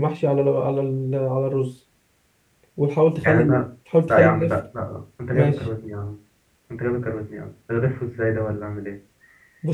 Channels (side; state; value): both; identical; correlation 1.00